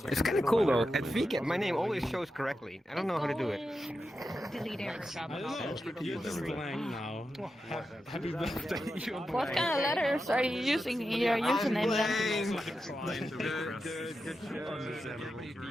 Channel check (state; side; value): normal; both; correlation 0.89